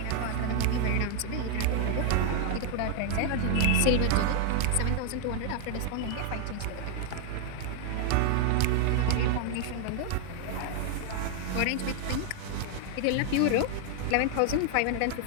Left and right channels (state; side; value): different; both; correlation 0.00